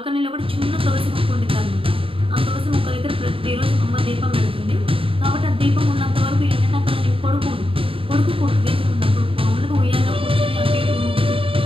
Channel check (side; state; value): left; late; 0.26 ms